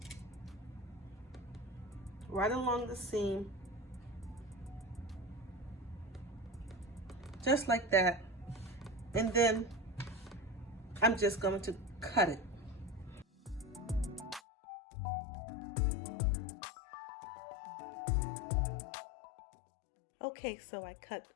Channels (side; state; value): right; drops out; at 14.4 s